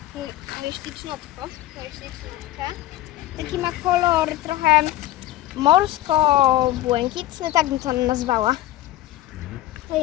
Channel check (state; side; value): quieter; right; 14.9 dB